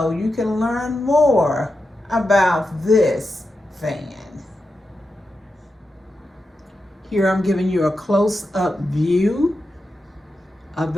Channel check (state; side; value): normal; both; correlation 0.89